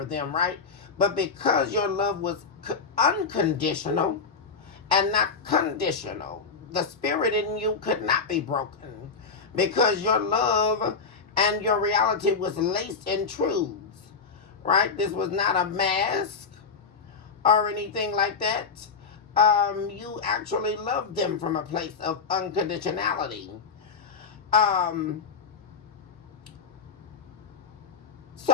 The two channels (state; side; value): quieter; right; 5.1 dB